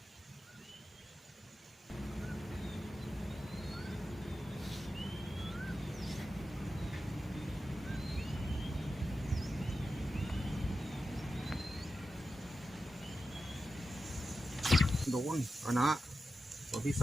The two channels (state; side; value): normal; both; correlation 0.91